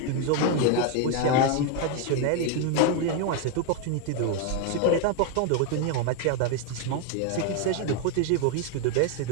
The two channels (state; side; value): different; both; correlation 0.01